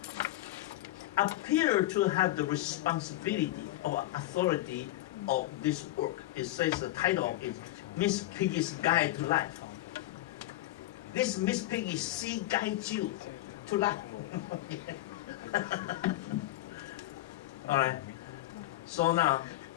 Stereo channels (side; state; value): right; quieter; 16.2 dB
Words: appeared to have the responsibility or authority of this work. It says the title is Miss Piggy's Guide to Life. This Miss Piggy, she guides you to life. All right. So now,